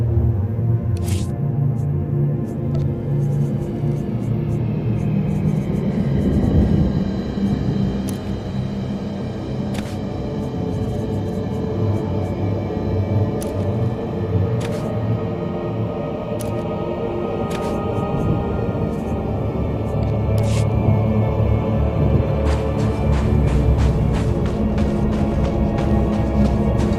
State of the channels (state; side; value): identical; both; correlation 1.00